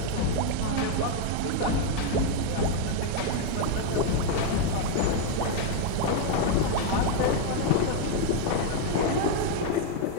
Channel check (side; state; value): both; different; correlation 0.00